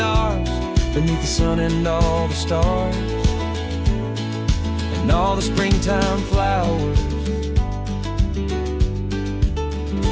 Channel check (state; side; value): identical; both; correlation 1.00